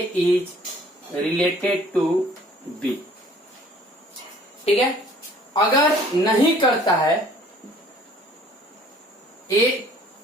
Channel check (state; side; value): normal; both; correlation 0.54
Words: is related to B, ठीक है। अगर नहीं करता है ए,